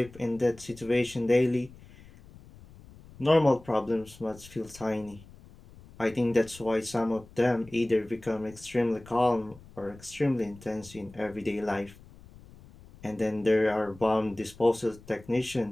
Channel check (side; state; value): left; noise; rumble, 21 dB below the sound